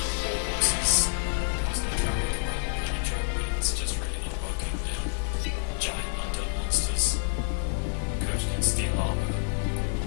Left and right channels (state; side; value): silent; right; digital silence